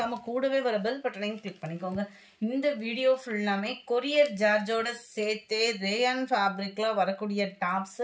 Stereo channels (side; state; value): both; identical; correlation 1.00